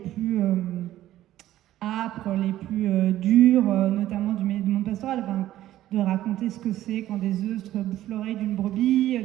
âpres, les plus durs, notamment du monde pastoral. Enfin, de raconter ce que c'est quand des œufs bouffent l'oreille d'une brebis,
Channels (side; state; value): left; quieter; 13.7 dB